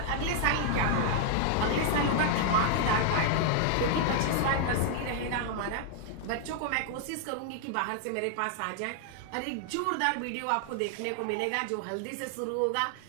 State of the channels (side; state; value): both; different; correlation 0.00